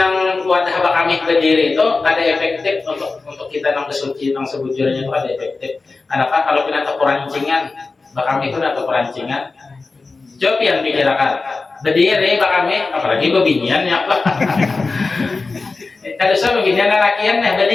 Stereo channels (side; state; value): right; quieter; 3.9 dB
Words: kami berdiri itu ada efektif untuk kita kesuci sebujurnya itu ada efektif. Kenapa? Kalau kita perancingan, kami itu atau perancingan. Coba yang pikirkan berdiri kami, apalagi bebinian ya apa? Kalau saya beginian lakian ya